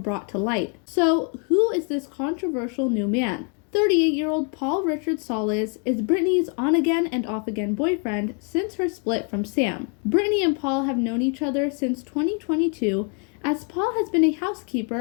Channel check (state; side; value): quieter; right; 39.6 dB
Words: to light. So, who is this controversial new man? 38-year-old Paul Richard Solis is Britney's on-again and off-again boyfriend since her split from Sam. Britney and Paul have known each other since 2022, as Paul has been a